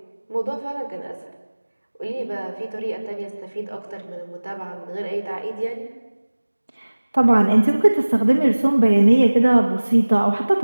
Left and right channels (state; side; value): inverted; both; correlation -1.00